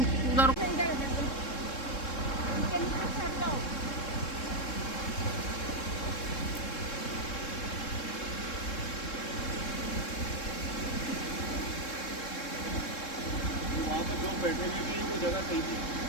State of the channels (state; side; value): late; right; 3.7 ms